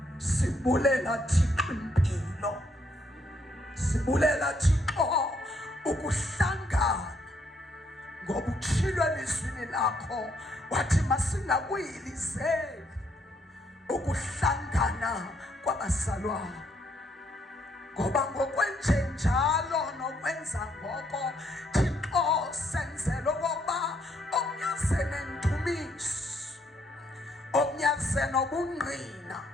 sibulela Thixo impilo, sibulela Thixo ukuhlangana, ngoba utshilo elizwini lakho wathi masingakuyilizeli ukuhlangana kwabazalwane, ngoba ngokwenjenjalo nokwenza ngoko Thixo senzela okokuba omnyaze nendumiso, omnyaze nobungqina,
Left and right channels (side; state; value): both; normal; correlation 0.71